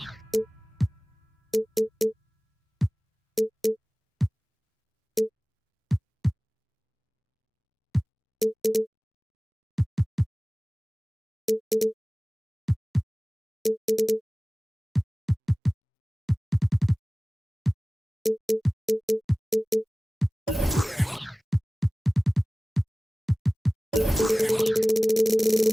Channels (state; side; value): normal; both; correlation 0.98